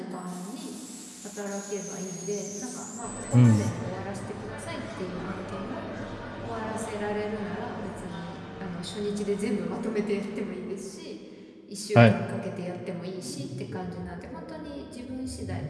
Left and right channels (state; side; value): identical; both; correlation 1.00